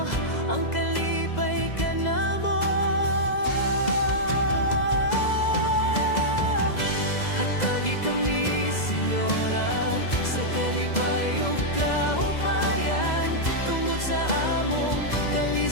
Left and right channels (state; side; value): late; right; 2.0 ms